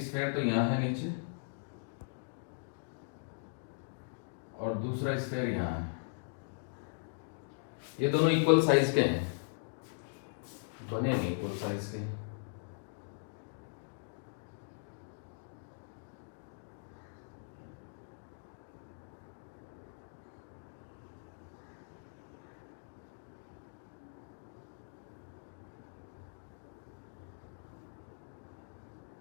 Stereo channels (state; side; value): silent; right; digital silence